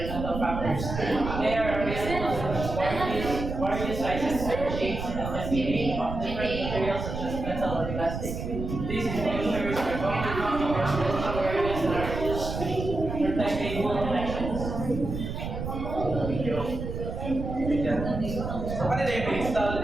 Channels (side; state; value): right; noise; rumble, 5 dB below the sound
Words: factors. They are available in various sizes and shapes and can be made of different materials such as metal or plastic. These enclosures are commonly used for residential areas and are used to protect cable connections. So, ano na yung install